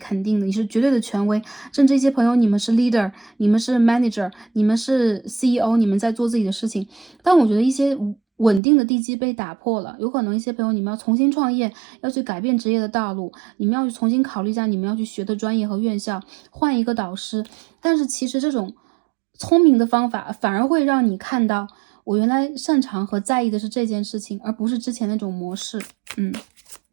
定的，你是绝对的权威。甚至一些朋友，你们是 leader， 你们是 manager， 你们是 CEO， 你们在做自己的事情。但我觉得一些稳定的地基被打破了，有可能一些朋友你们要重新创业，要去改变职业的道路，你们要去重新考虑一下你们要去学的专业和院校，换一个导师。但是其实这种聪明的方法反而会让你看到，我原来擅长和在意的是这件事情，而不是之前那种模式。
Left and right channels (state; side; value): drops out; left; at 8.6 s